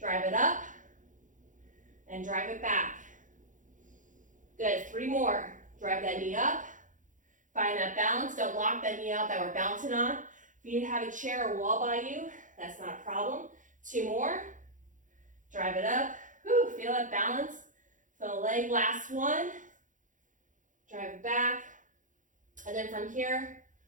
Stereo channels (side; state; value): left; late; 0.37 ms